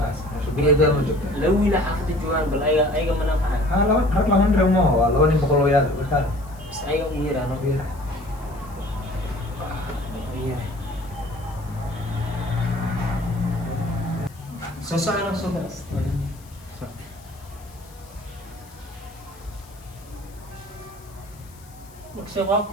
شو بيقدر من جوجا لو إلى حافظ الجوار بل أي منافعة لو رك لو ندري ما هو لو نبغى بقولوا يا وكان بس أي غير أنا غير سوسة سوسة شباب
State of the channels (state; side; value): noise; left; hiss, 25 dB below the sound